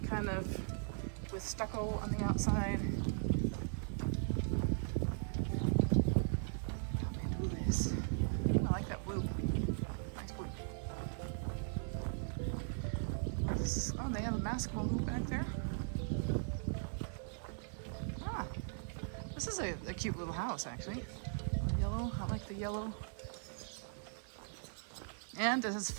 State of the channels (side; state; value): left; silent; 52 dB below the other